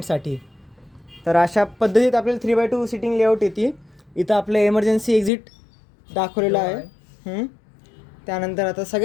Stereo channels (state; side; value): drops out; right; at 5.3 s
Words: तर अशा पद्धतीत आपल्याला 3x2 सिटिंग लेआउट येते. इथं आपलं एमर्जन्सी एक्झिट दाखवलेलं आहे. त्यानंतर आता